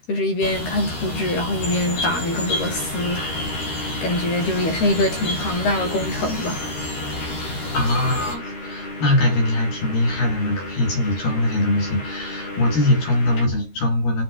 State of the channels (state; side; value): late; right; 13 ms